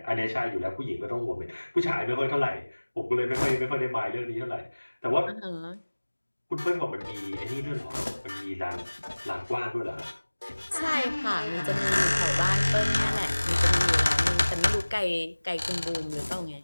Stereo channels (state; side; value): inverted; both; correlation -1.00